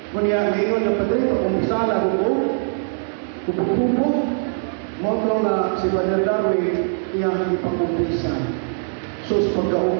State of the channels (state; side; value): silent; left; 65 dB below the other